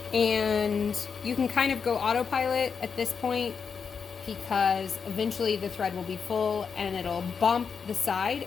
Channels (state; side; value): quieter; right; 6.0 dB